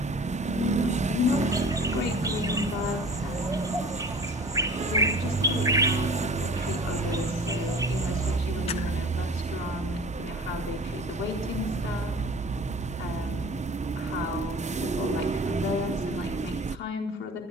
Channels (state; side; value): normal; both; correlation 0.43